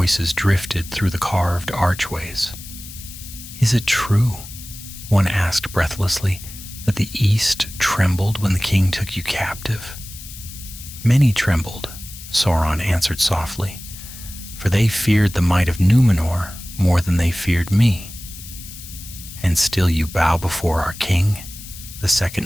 drifted through the carved archways. "Is it true," one asked breathlessly, "that the East trembled when the king took you captive?" "Many trembled," Sauron answered softly, "for they feared the might of Numenor more than they feared me." "And still you bow before our king?" the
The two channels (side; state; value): left; noise; hiss, 14 dB below the sound